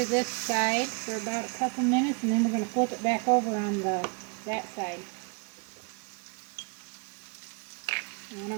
this side for about a couple minutes, and then we're going to flip it back over on that side. And what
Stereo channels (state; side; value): quieter; left; 33.6 dB